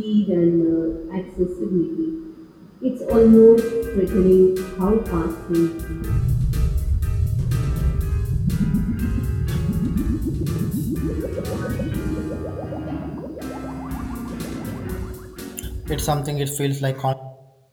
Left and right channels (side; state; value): both; identical; correlation 1.00